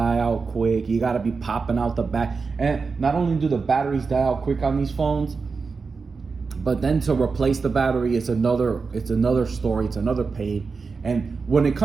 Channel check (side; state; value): left; quieter; 4.7 dB